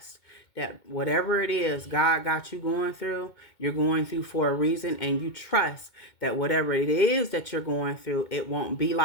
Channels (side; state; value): right; late; 2.2 ms